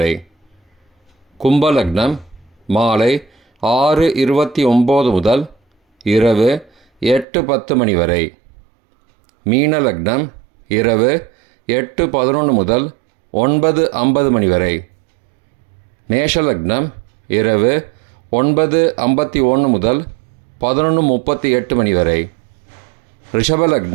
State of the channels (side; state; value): left; drops out; at 7.2 s